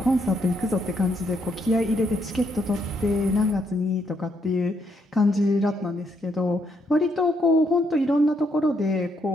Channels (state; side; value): normal; both; correlation 0.75